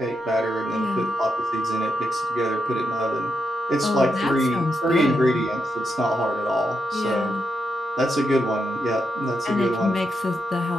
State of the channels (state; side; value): normal; both; correlation 0.83